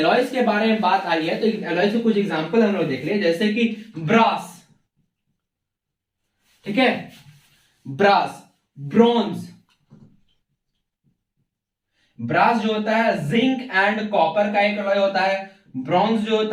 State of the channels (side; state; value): both; identical; correlation 1.00